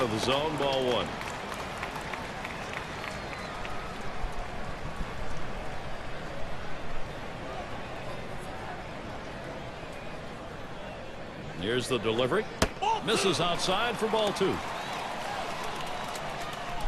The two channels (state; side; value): identical; both; correlation 1.00